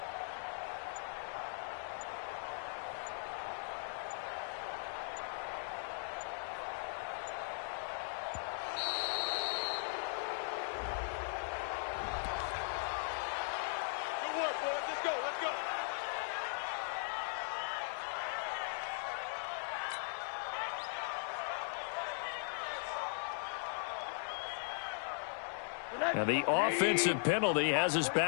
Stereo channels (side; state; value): right; silent; digital silence